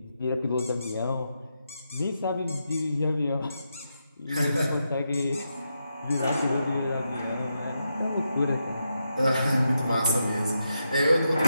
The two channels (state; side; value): inverted; both; correlation -0.85